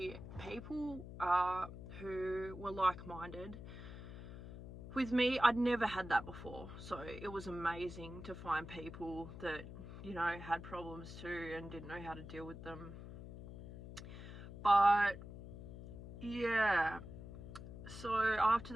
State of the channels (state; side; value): noise; left; hum, 12 dB below the sound